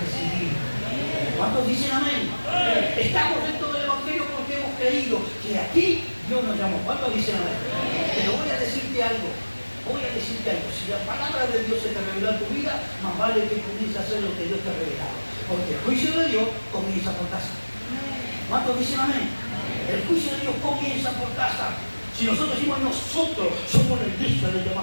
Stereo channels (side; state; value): both; inverted; correlation -1.00